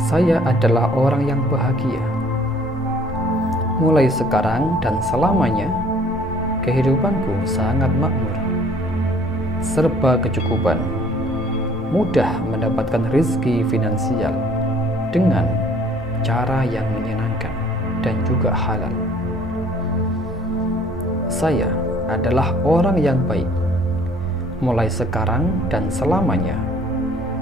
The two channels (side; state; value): right; noise; hum, 22 dB below the sound